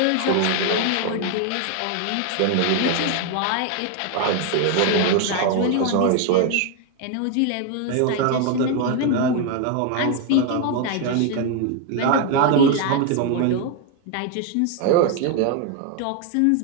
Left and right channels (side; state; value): both; different; correlation 0.01